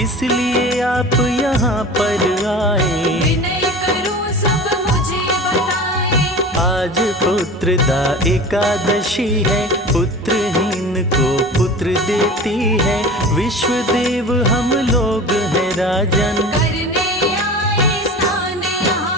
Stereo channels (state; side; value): normal; both; correlation 0.36